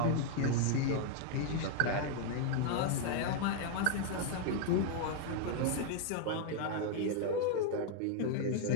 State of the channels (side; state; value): both; different; correlation 0.00